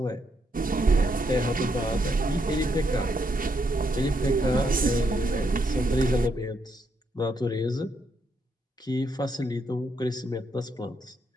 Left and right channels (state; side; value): normal; both; correlation 0.77